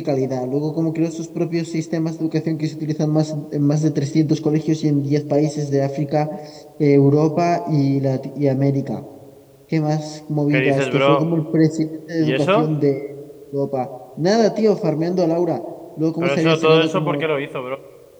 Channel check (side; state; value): both; identical; correlation 1.00